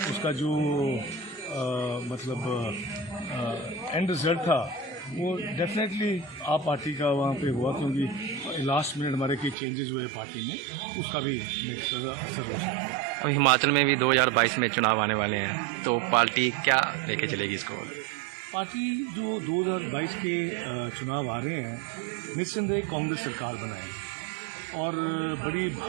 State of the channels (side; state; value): left; drops out; at 9.6 s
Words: उसका जो एंड रिजल्ट था वो डेफिनेटली आप पार्टी का वहाँ पे हुआ, क्योंकि लास्ट मिनट हमारे कई चेंजेस हुए पार्टी में, उसका भी असर हो सकता है। अब हिमाचल में भी 2022 में चुनाव आने वाले हैं, तो पार्टी क्या लेके चलेगी इसको? पार्टी जो 2022 के चुनाव आ रहे हैं, निस्संदेह कांग्रेस सरकार बनाएगी और बड़ी